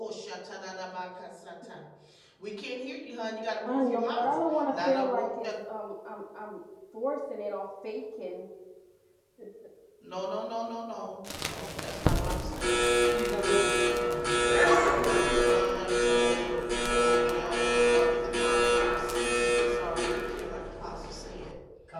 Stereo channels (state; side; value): identical; both; correlation 1.00